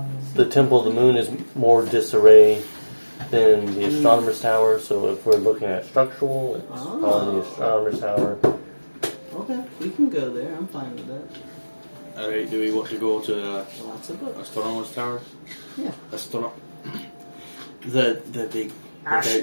the Temple of the Moon is more disarray than the Astronomer's Tower. So if we're looking at structural, it's on the Astronomer's Tower. Okay, we can go there. I'm fine with that. Alright, do we want to go to Lots of books. Astronomer's Tower? Yeah. The big...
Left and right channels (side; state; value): both; inverted; correlation -1.00